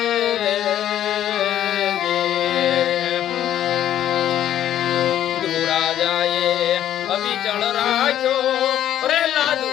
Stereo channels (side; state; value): right; quieter; 11.4 dB